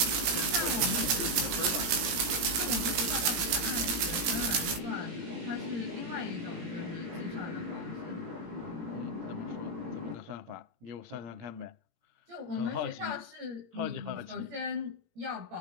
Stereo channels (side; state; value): left; late; 17 ms